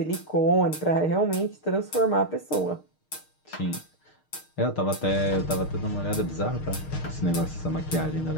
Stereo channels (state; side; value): late; right; 6.5 ms